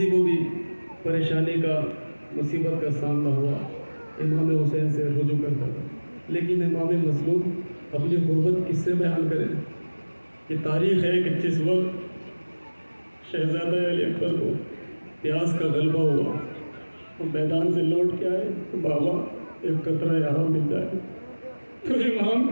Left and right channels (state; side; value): inverted; both; correlation -1.00